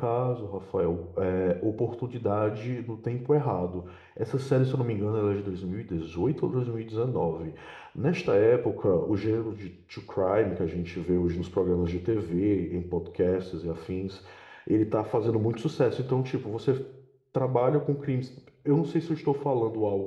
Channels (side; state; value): both; identical; correlation 1.00